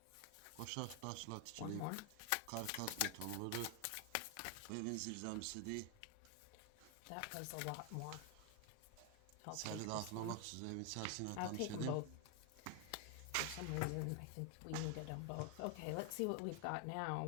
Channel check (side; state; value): both; different; correlation 0.00